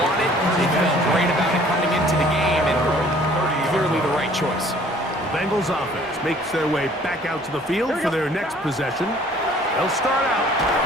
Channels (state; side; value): normal; both; correlation 0.55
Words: They felt great about it coming into the game, and clearly the right choice. Bengals offense makes their way back out to the field for their next possession. They'll start out